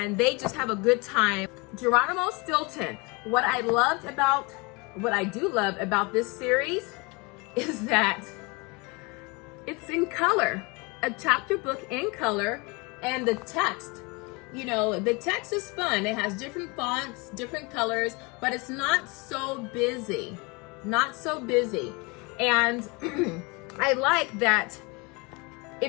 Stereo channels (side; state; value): right; quieter; 28.0 dB